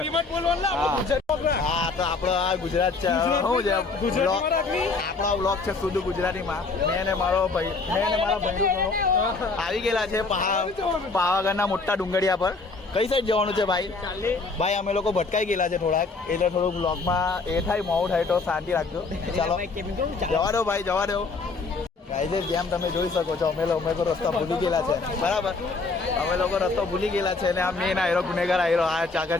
હા તો આપણો આ ગુજરાત છે. શું છે આપણો બ્લોગ છે શુદ્ધ ગુજરાતીમાં. મેં ને મારા ભાઈ આવી ગયેલા છે પાવાગઢના મોટા ડુંગળિયા પર. કઈ સાઈડ જવાનું છે ભાઈ અમે લોકો ભટકાઈ ગયેલા છે થોડાક એટલે થોડુંક બ્લોગમાં એ થાય મોડું થાય તો શાંતિ રાખજો. ચાલો જવા દો ભાઈ જવા દો. ગાઈઝ જેમ તમે જોઈ શકો છો અમે લોકો રસ્તા ભૂલી ગયેલા છે. બરાબર અમે લોકો રસ્તો ભૂલી ગયેલા છે ને આ મેન આયરો ગુનેગાર આયરો આ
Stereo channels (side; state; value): right; quieter; 4.0 dB